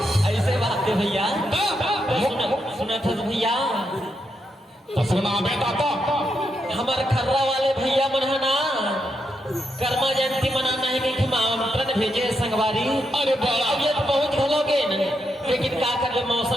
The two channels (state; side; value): normal; both; correlation 0.82